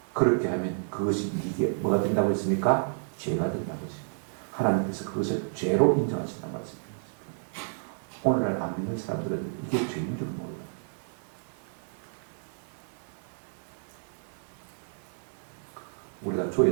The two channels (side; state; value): left; silent; 58 dB below the other